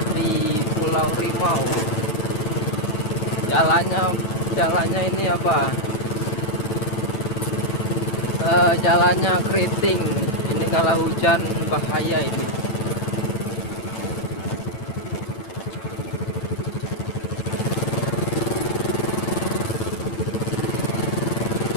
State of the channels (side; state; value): right; late; 9.4 ms